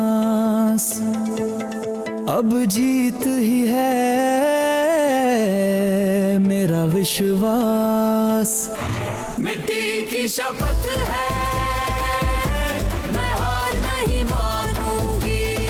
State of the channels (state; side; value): identical; both; correlation 1.00